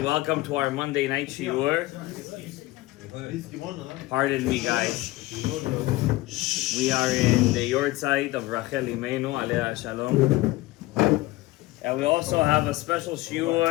welcome to our Monday night shiur. Pardon me, guys. We are in the Yahrtzeit of Imenus, alea Shalom. And we also have a special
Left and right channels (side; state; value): right; quieter; 19.0 dB